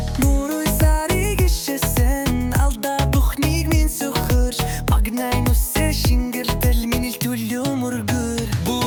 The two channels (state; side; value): identical; both; correlation 1.00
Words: Muruy sari gişesen Alda buhnig min sukhırç Pagnayn usse şingirtel Minil tullu murgur